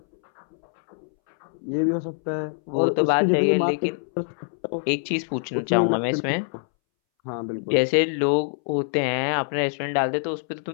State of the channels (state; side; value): silent; right; 62 dB below the other